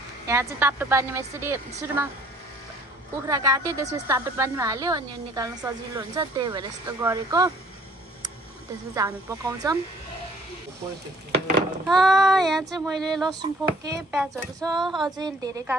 यहाँ चाहिँ तातो पानीमा यसरी सुरुमा कुखुरा काट्यो त्यसपछि तातो पानीमा हाल्यो अनि निकाल्न सजिलो हुन्छ त्यही भएर यस्तो गरेको त्यसपछि हामी पकाउँछौं यहाँ चाहिँ मैले लसुन पोके प्याजहरु छ अझै धेरै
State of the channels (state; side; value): normal; both; correlation 0.57